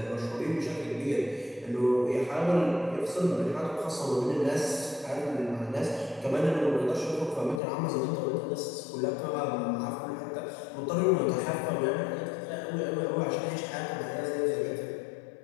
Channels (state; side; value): drops out; right; at 7.6 s